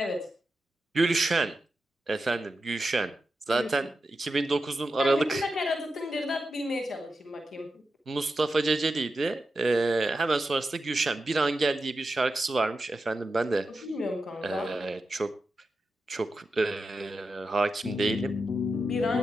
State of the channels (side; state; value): both; normal; correlation 0.89